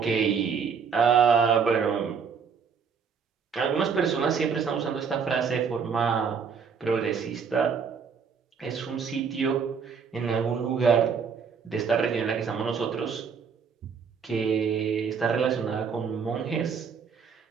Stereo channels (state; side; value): quieter; left; 6.2 dB